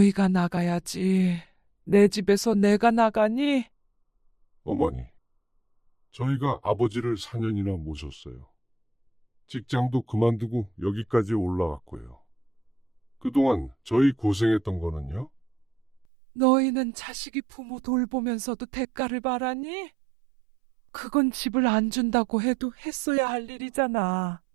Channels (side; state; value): left; drops out; at 16.1 s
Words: 나가야지. 내 집에서 내가 나가니? 어머니. 저희가 아버지를 4년이나 모셨어요. 직장도 그만두고 여기까지 올라왔고요. 그동안 저희 고생했던 거는요? 너희는 자식이 부모 돌보면서도 대가를 바라니? 그건 집을 안 준다고 해도 했어야 할 일이잖아.